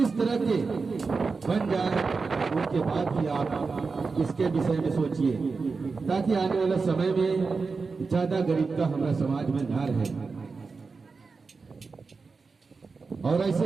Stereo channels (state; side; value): quieter; left; 4.5 dB